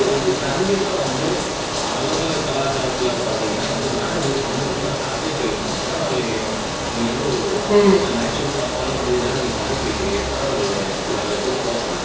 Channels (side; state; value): both; identical; correlation 1.00